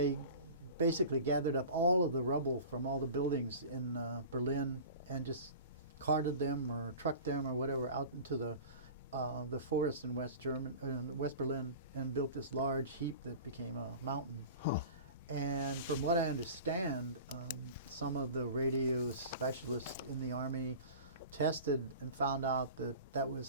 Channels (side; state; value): both; inverted; correlation -0.37